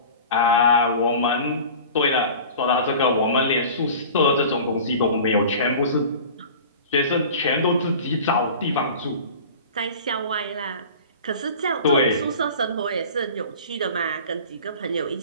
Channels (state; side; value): inverted; both; correlation -0.39